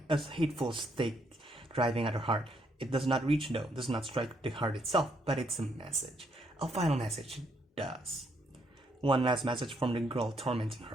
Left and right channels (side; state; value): both; normal; correlation 0.72